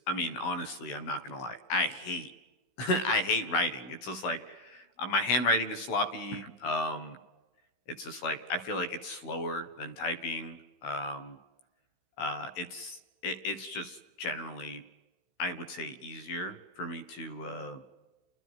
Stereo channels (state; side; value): late; right; 15 ms